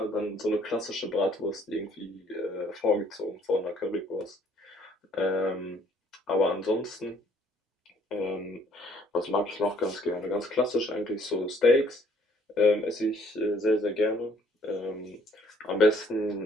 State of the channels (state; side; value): normal; both; correlation 0.62